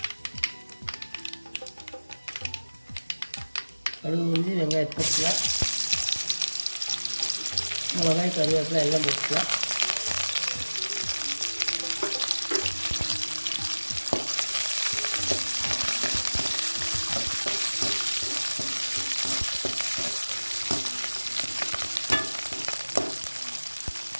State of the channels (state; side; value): inverted; both; correlation -1.00